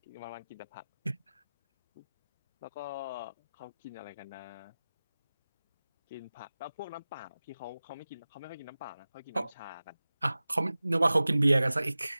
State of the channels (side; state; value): both; inverted; correlation -0.96